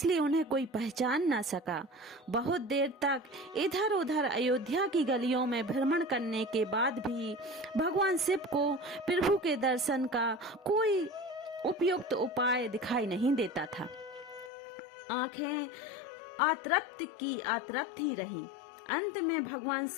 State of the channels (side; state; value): right; drops out; at 14.5 s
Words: उन्हें कोई पहचान न सका। बहुत देर तक इधर उधर अयोध्या की गलियों में भ्रमण करने के बाद भी भगवान शिव को प्रभु के दर्शन का कोई उपयुक्त उपाय दिखाई नहीं देता था। आंखें आतृप्त ही रही। अंत में भगवान